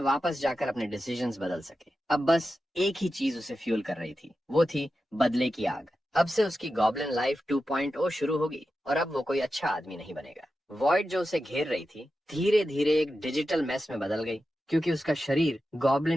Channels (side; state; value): both; normal; correlation 0.91